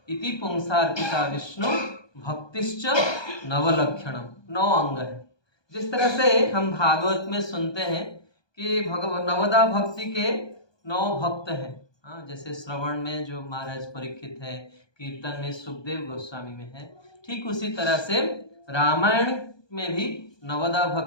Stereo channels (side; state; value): right; late; 1.2 ms